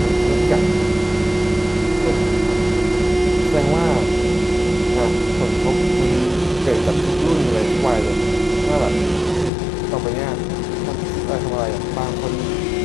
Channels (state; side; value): drops out; right; at 9.5 s